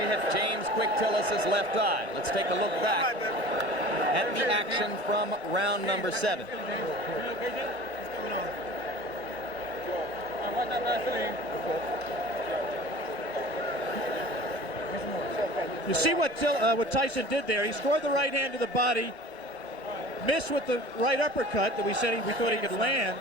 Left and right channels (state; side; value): normal; both; correlation 0.41